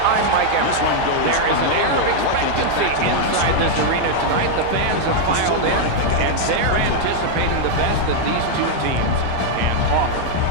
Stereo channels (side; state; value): both; different; correlation 0.00